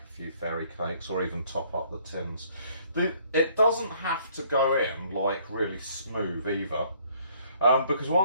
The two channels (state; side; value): inverted; both; correlation -0.62